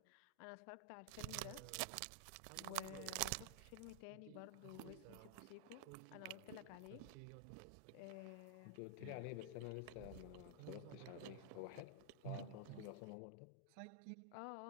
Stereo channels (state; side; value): different; both; correlation -0.01